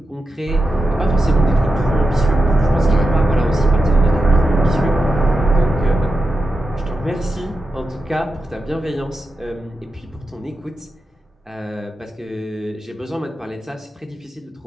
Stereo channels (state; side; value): normal; both; correlation 0.89